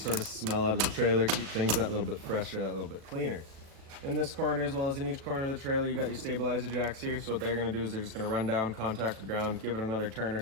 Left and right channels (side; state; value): left; late; 37 ms